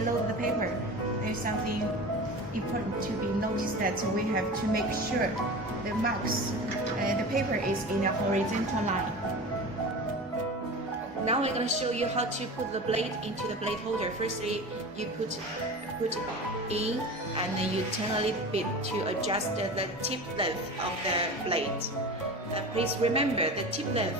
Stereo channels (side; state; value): both; normal; correlation 0.32